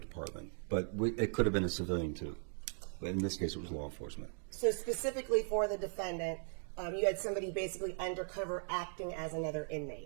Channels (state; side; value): silent; left; 52 dB below the other